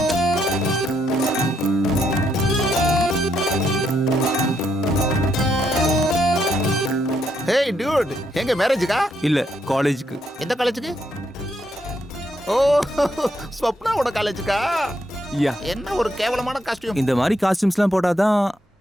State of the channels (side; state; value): both; normal; correlation 0.76